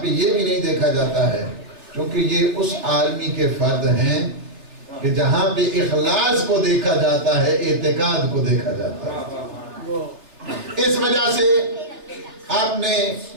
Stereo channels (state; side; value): late; left; 3.4 ms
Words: یہ بھی نہیں دیکھا جاتا ہے کیونکہ یہ اس عالمی کے فرد ہیں کہ جہاں پہ اخلاص کو دیکھا جاتا ہے، اعتقاد کو دیکھا جاتا ہے۔ اس وجہ سے آپ نے